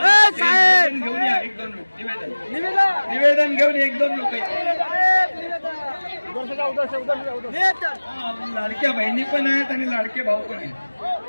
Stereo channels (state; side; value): inverted; both; correlation -1.00